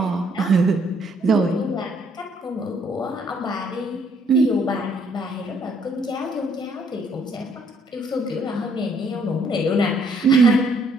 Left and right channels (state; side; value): normal; both; correlation 0.66